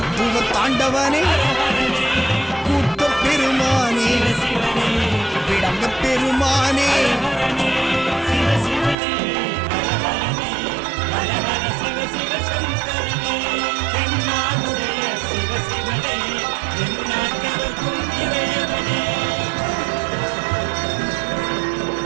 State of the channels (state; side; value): drops out; left; at 9.0 s